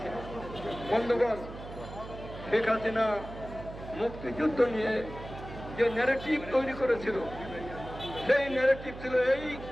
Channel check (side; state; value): right; noise; hum, 12 dB below the sound